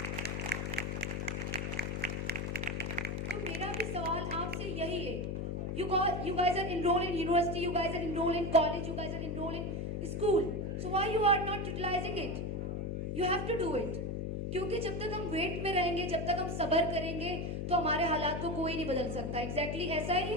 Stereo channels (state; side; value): noise; left; hum, 2 dB below the sound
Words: तो मेरा भी सवाल आपसे यही है, you guys are enrolled in university, you guys are enrolled in college, you guys are enrolled in school, so why you are not utilizing it? You have to do it. क्योंकि जब तक हम वेट में रहेंगे, जब तक हम सब्र करेंगे, तो हमारे हालात को कोई नहीं बदल सकता। एग्जैक्टली ऐसा ही